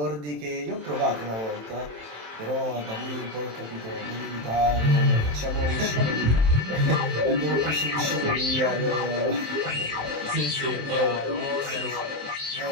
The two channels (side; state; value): left; late; 27 ms